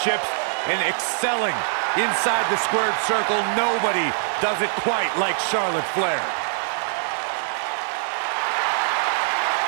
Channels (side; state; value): left; silent; digital silence